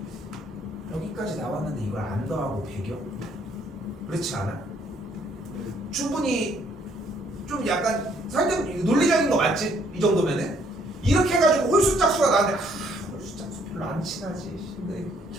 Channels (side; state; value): both; normal; correlation 0.66